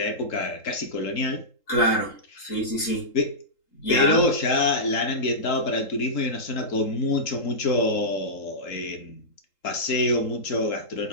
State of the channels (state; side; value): late; right; 3.8 ms